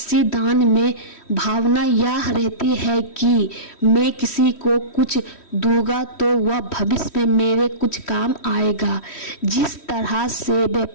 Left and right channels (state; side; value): late; right; 3.1 ms